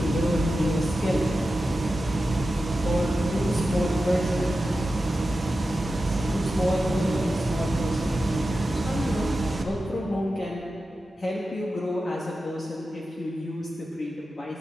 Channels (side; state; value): both; normal; correlation 0.92